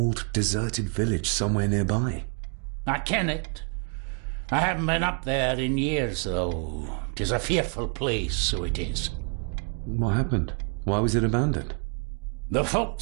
deserted village somewhere nearby. I ken it. I haven't been up there in years, though. 'Tis a fearful place, so it is. What happened? Why was it abandoned? The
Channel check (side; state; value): left; quieter; 39.1 dB